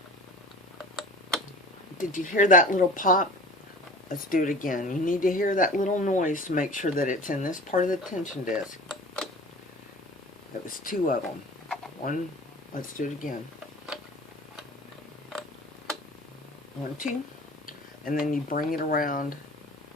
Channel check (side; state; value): both; normal; correlation 0.40